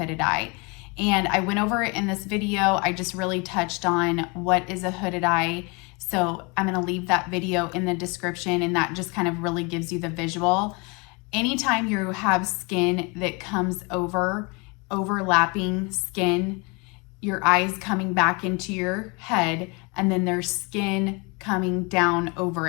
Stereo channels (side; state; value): right; quieter; 29.6 dB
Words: eye. And I went over it in this video. I just really touched on what is a hooded eye. So I'm gonna leave that video in the description, and that just kind of really gives you the visual. Anytime you have skin that comes overlapping skin, your eyes coming back into your head, and then there's skin coming down over